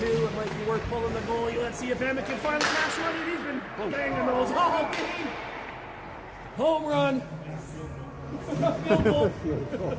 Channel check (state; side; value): identical; both; correlation 1.00